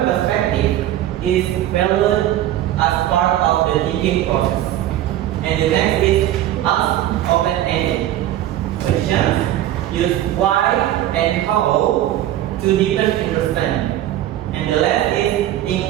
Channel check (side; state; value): left; quieter; 13.0 dB